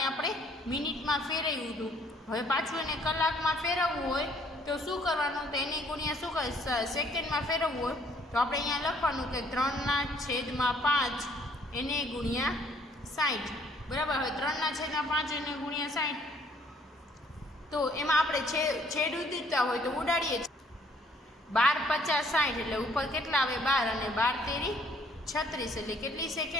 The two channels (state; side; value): normal; both; correlation 0.62